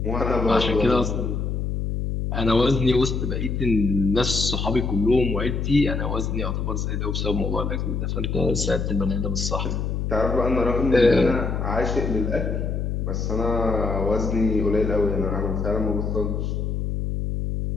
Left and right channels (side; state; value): left; noise; hum, 1 dB below the sound